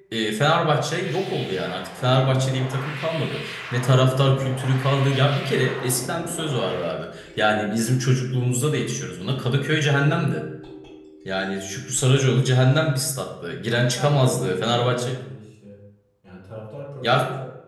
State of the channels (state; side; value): identical; both; correlation 1.00